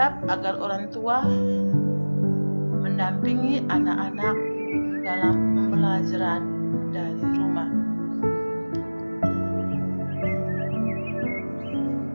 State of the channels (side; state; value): both; inverted; correlation -1.00